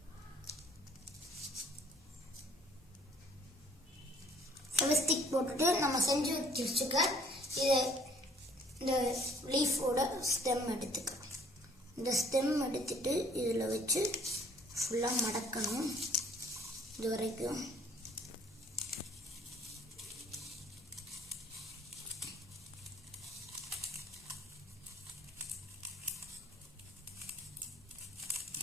ஃபெவிஸ்டிக் போட்டுட்டு நம்ம செஞ்சு வச்சுக்க இதை இந்த லீஃபோட ஸ்டெம் எடுத்துக்கலாம். இந்த ஸ்டெம் எடுத்துட்டு இதில் வச்சு ஃபுல்லாக மடக்கணும். இது வரைக்கும்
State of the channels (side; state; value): both; normal; correlation 0.58